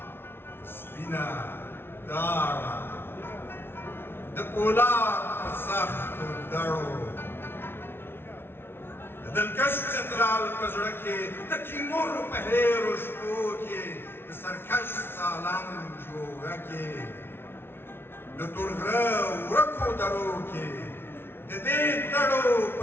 سپینه داړه د پولاد په سختو دړو د دلکش چترال په زړه کې د تیمور په هیرو شپو کې د سرکش سالنګ جوړه کې د تورغره ورکو درو کې د دې دړو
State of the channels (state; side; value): late; right; 0.11 ms